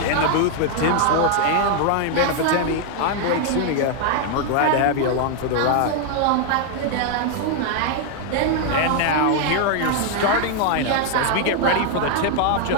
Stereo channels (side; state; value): both; different; correlation 0.00